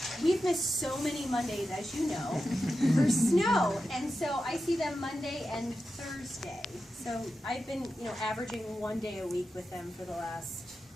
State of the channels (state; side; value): normal; both; correlation 0.91